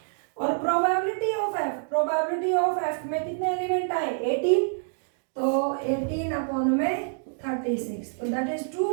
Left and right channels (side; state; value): left; silent; digital silence